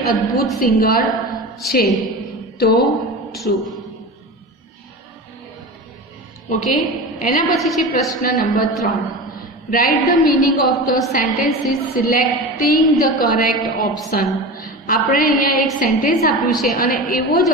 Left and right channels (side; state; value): both; normal; correlation 0.29